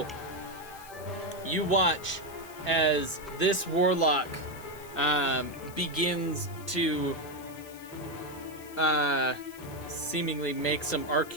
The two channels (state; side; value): noise; left; hiss, 19 dB below the sound